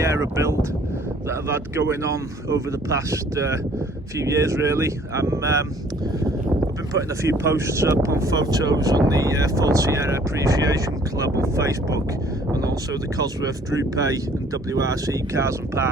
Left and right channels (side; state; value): both; normal; correlation 0.57